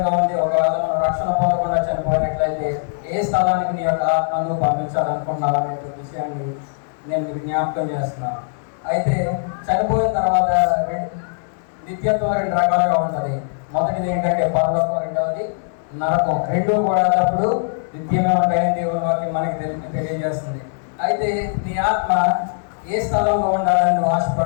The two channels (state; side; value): silent; right; digital silence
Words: ఉంది. ఒకవేళ మనం రక్షణ పొందకుండా చనిపోయినట్లయితే ఏ స్థలానికి నీ యొక్క ఆత్మను పంపించాలనుకున్నావు అనే విషయాన్ని నేను మీకు జ్ఞాపకం చేస్తున్నాను. అయితే చనిపోయిన తర్వాత నిత్యత్వం రెండు రకాలుగా ఉంటుంది. మొదటిది ఏంటంటే పరలోకం, రెండవది నరకం. రెండూ కూడా అప్పుడు నిత్యంగా ఉంటాయని దేవుని వాక్యం మనకి తెలియజేస్తుంది. అయితే నీ ఆత్మ ఏ స్థలంలో ఉండాలని నువ్వు